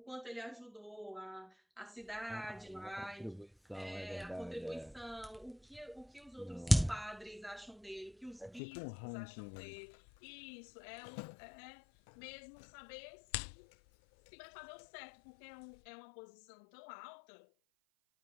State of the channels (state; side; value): drops out; right; at 8.6 s